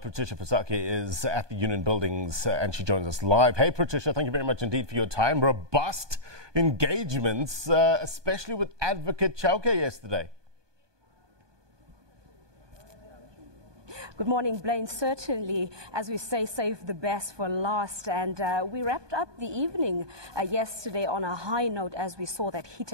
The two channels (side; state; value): left; late; 1.2 ms